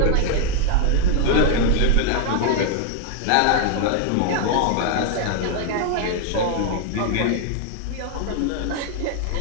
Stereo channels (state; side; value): different; both; correlation 0.00